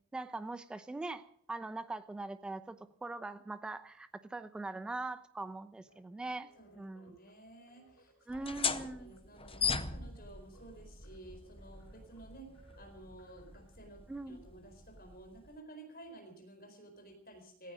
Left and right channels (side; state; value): both; normal; correlation 0.37